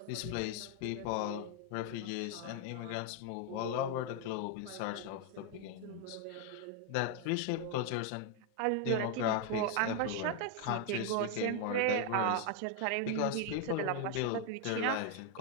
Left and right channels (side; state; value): both; different; correlation 0.00